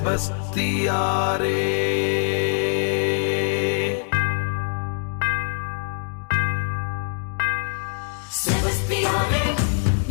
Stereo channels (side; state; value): right; silent; digital silence